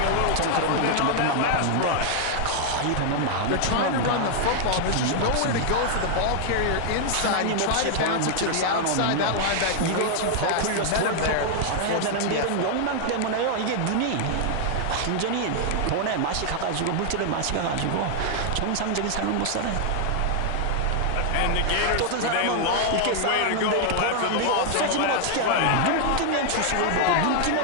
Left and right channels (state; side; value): different; both; correlation 0.00